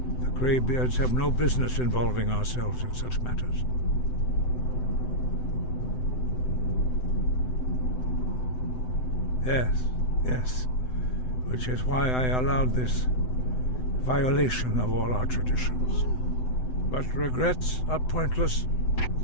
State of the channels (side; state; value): right; late; 7.9 ms